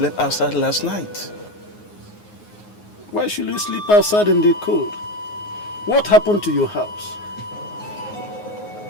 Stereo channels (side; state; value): right; late; 9.6 ms